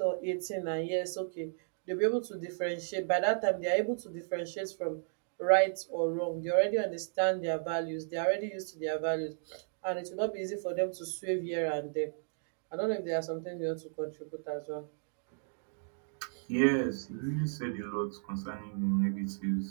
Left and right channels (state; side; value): silent; left; digital silence